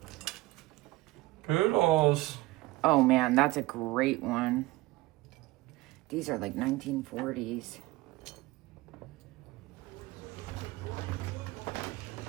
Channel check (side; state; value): left; quieter; 19.3 dB